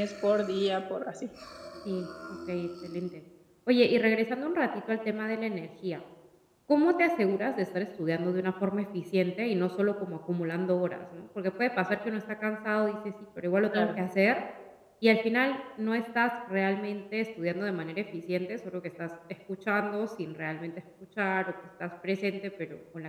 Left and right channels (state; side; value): identical; both; correlation 1.00